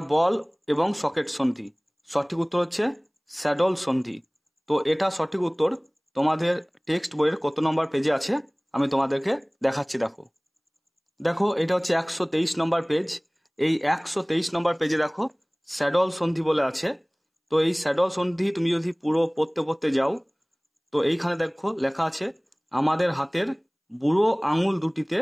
বল এবং সকেট সন্ধি। সঠিক উত্তর হচ্ছে স্যাডল সন্ধি। তো এটা সঠিক উত্তর তোমাদের টেক্সট বইয়ের কত নম্বর পেজে আছে আমি তোমাদেরকে দেখাচ্ছি, দেখো। দেখো এটা হচ্ছে 123 নম্বর পেজ। এই 123 নম্বর পেজে দেখো স্যাডল সন্ধি বলে আছে। তো এই স্যাডল সন্ধি তুমি যদি পুরো পড়তে পড়তে যাও, তো এইখানে দেখো লেখা আছে, আমাদের হাতের বুড়ো আঙুল দুটিতে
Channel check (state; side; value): identical; both; correlation 1.00